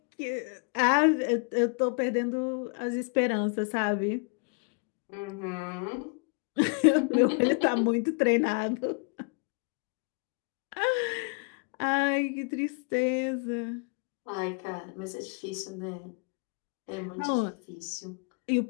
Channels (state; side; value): quieter; right; 37.5 dB